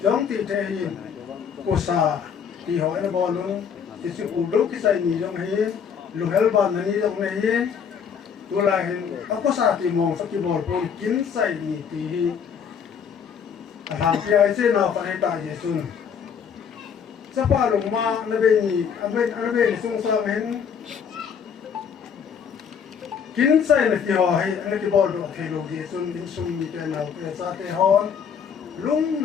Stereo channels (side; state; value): right; quieter; 7.2 dB